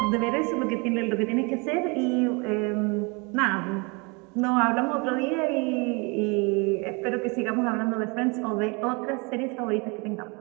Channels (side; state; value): left; quieter; 30.0 dB